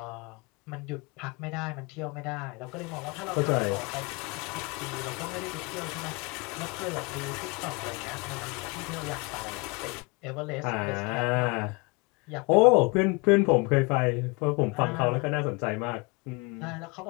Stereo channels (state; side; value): quieter; right; 28.9 dB